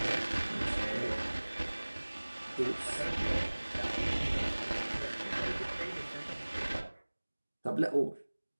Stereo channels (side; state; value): both; inverted; correlation -1.00